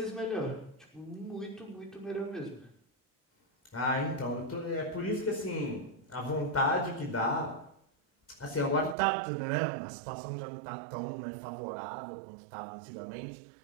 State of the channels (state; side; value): drops out; left; at 9.0 s